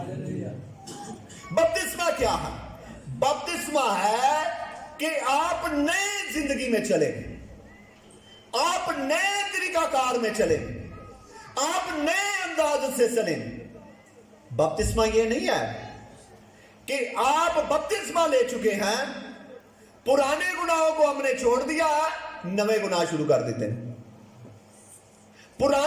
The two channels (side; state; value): both; identical; correlation 1.00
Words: बपतिस्मा क्या है? बपतिस्मा है कि आप नई जिंदगी में चले, आप नए तरीकाकार में चले, आप नए अंदाज से चले। बपतिस्मा ये नहीं है कि आप बपतिस्मा ले चुके हैं, पुराने गुनाहों को हमने छोड़ दिया, नए गुनाह शुरू कर देते हैं।